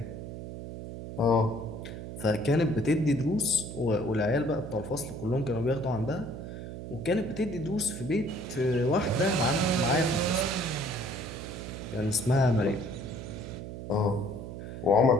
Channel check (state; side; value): noise; right; hum, 9 dB below the sound